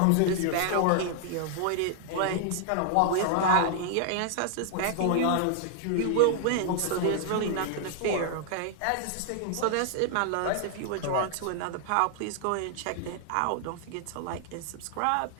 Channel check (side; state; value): both; different; correlation -0.01